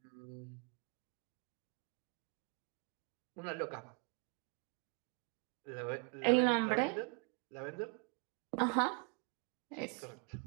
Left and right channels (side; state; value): left; quieter; 35.3 dB